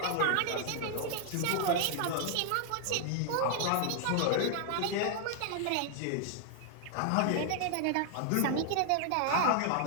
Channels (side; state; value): both; different; correlation 0.00